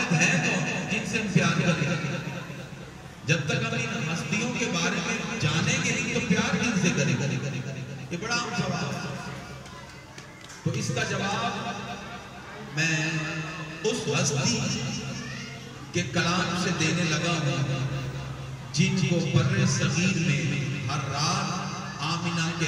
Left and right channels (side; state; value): both; identical; correlation 1.00